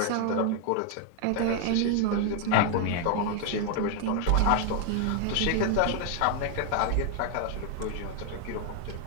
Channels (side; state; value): both; different; correlation 0.00